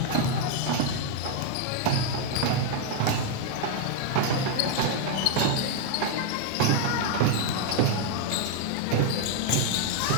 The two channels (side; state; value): both; different; correlation 0.01